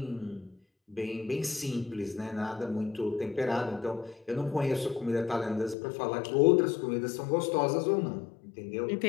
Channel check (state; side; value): drops out; right; at 5.8 s